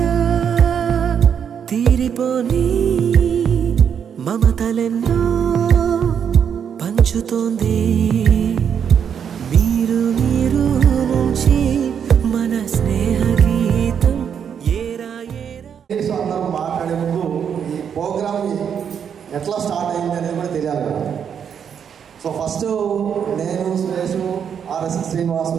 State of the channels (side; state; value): left; quieter; 7.8 dB